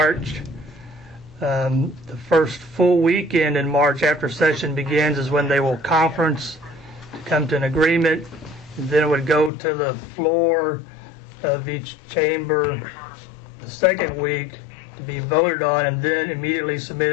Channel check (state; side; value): drops out; right; at 9.5 s